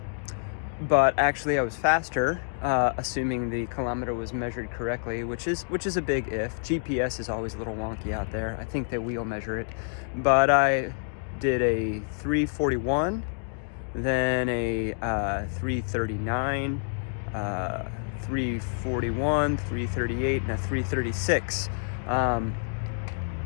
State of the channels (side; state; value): right; silent; digital silence